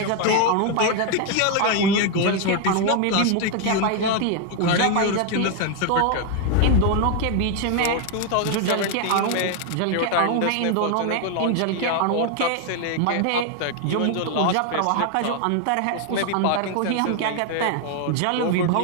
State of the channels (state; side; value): different; both; correlation 0.01